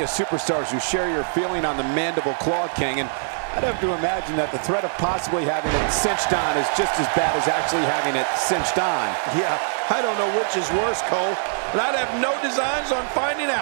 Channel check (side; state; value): left; silent; digital silence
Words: of superstars who share your feeling on the Mandible Claw King, and I'd have to imagine that the threat of possibly having it cinched on is just as bad as actually having it cinched on. Yeah, I don't know which is worse, Cole, and I'd have no designs on finding